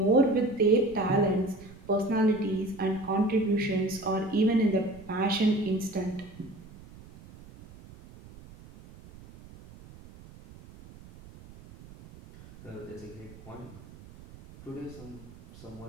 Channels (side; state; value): right; noise; rumble, 20 dB below the sound